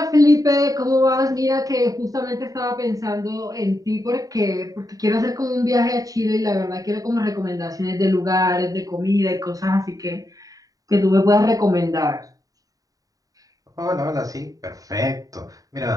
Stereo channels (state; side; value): late; left; 0.17 ms